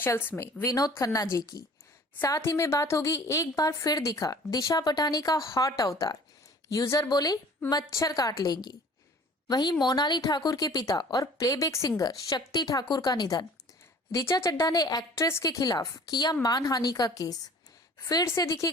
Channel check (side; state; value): both; normal; correlation 0.49